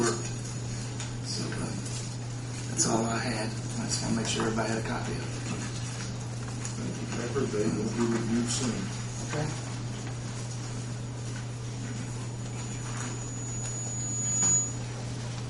So that's all I had. I just want to make sure everybody had a copy of it. Thank you, Pepper. They will be reviewed soon. Okay.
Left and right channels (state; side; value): identical; both; correlation 1.00